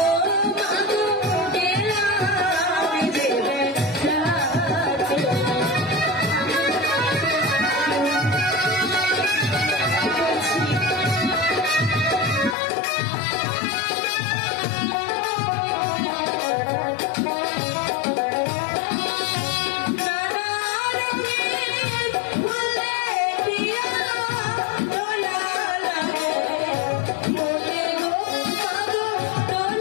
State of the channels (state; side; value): drops out; right; at 12.6 s